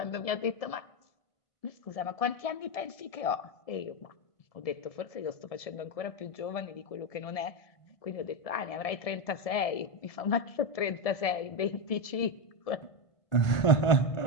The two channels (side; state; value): right; late; 1.7 ms